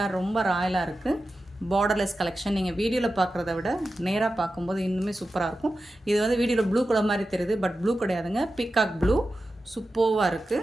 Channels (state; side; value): normal; both; correlation 0.92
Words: ரொம்ப ராயலாக இருக்குது. Borderless collection. நீங்கள் வீடியோவில் பார்க்குறத விட நேராக பார்க்கும்போது இன்னுமே சூப்பராக இருக்கும். இது வந்து வீடியோவில் ப்ளூ கலர் மாதிரி தெரியுது, பட் ப்ளூ கிடையாதுங்க. பீகாக் ப்ளூ சூப்பராக